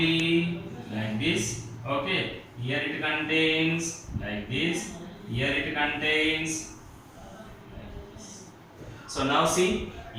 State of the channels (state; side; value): identical; both; correlation 1.00